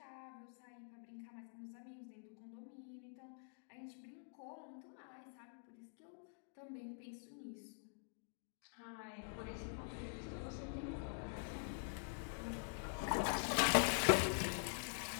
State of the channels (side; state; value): right; silent; digital silence